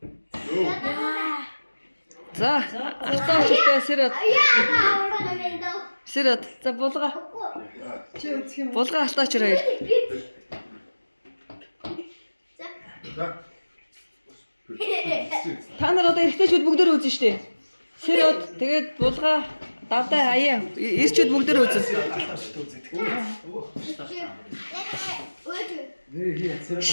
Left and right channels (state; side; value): inverted; both; correlation -1.00